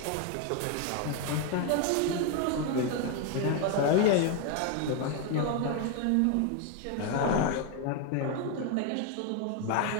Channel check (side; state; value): both; different; correlation 0.01